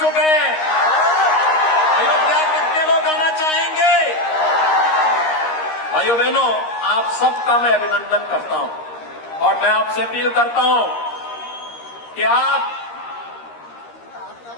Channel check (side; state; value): right; late; 13 ms